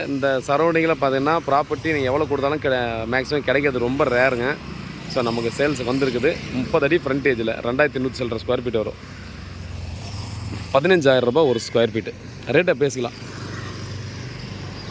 இந்த சரௌண்டிங்கில் பார்த்தீங்கன்னா ப்ராப்பர்ட்டி நீங்கள் எவ்வளோ கொடுத்தாலும் மேக்ஸிமம் கிடைக்கிறது ரொம்ப ரேருங்க. ஸோ நமக்கு சேல்ஸுக்கு வந்திருக்குது. 30 அடி ஃப்ரண்டேஜில் 2100 சில்லற ஸ்கொயர் ஃபீட் வரும். 15,000 ரூபாய் ஒரு ஸ்கொயர் ஃபீட்டு. ரேட்டை பேசிக்கலாம்.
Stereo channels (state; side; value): identical; both; correlation 1.00